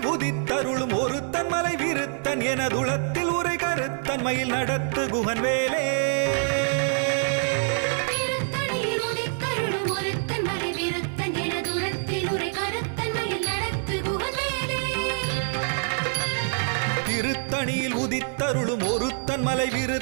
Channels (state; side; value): silent; left; digital silence